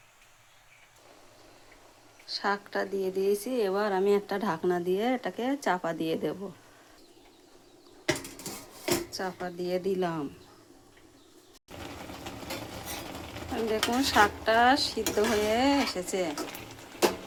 শাকটা দিয়ে দিয়েছি, এবার আমি একটা ঢাকনা দিয়ে এটাকে চাপা দিয়ে দেব। চাপা দিয়ে দিলাম। দেখুন শাকটা সিদ্ধ হয়ে এসেছে,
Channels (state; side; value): identical; both; correlation 1.00